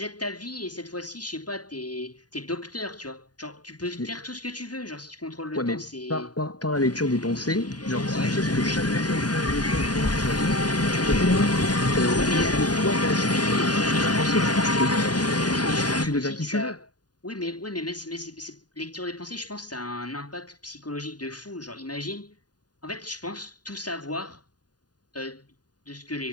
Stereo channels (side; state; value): right; late; 0.69 ms